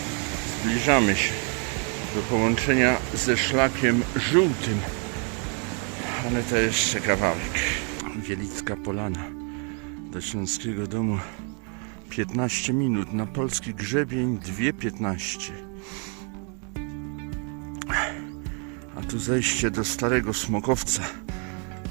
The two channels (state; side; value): quieter; left; 38.9 dB